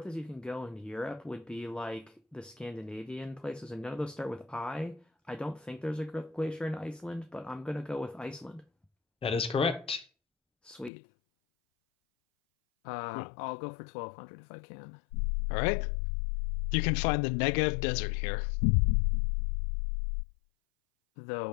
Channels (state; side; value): drops out; right; at 10.9 s